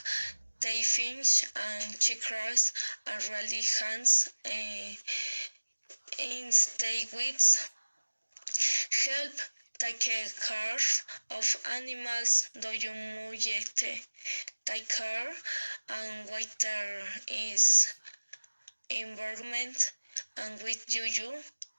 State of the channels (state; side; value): inverted; both; correlation -1.00